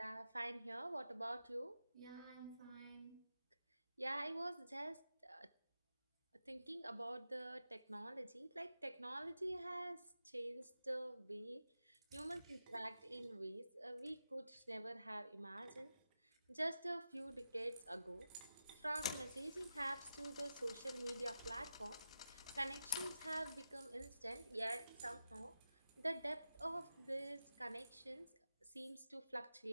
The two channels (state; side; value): inverted; both; correlation -0.90